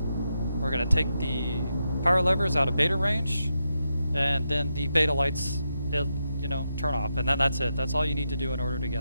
We're going to take the power levers out of beta range, and then the beta lights, turn off, and then that's it. That's all you need to do in order to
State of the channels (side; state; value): both; inverted; correlation -0.85